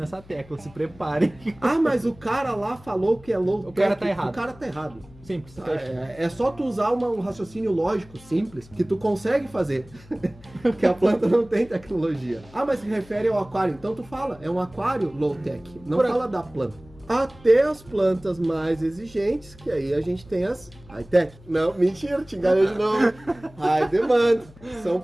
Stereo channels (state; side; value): noise; left; hum, 23 dB below the sound